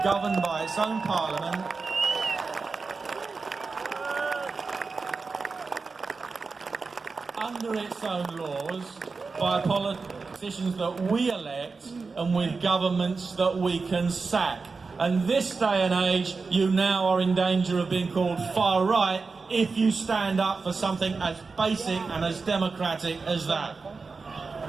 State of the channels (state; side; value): quieter; left; 4.4 dB